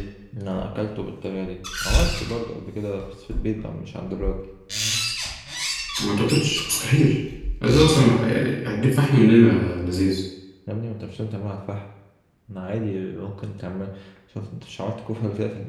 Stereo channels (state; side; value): identical; both; correlation 1.00